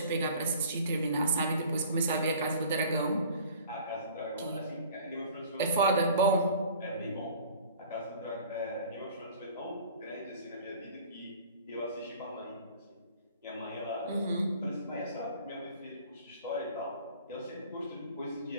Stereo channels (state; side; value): inverted; both; correlation -0.47